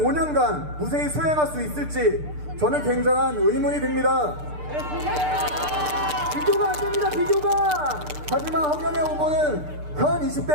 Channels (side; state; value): left; late; 6.7 ms